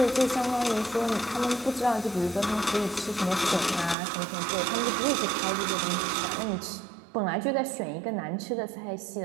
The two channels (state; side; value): drops out; left; at 4.0 s